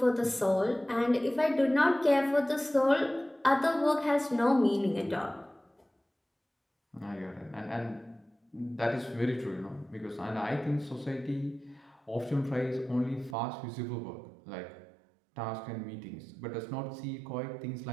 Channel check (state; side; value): drops out; left; at 13.4 s